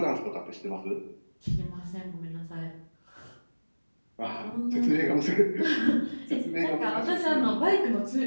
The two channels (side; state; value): both; inverted; correlation -1.00